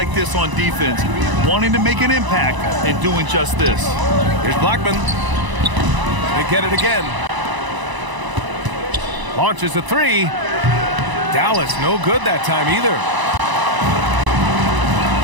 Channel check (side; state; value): left; late; 1.0 ms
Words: this on defense, wanting to make an impact and doing just this. Here's Blackman. They get it again. Launches a 3. Dallas no good that time either.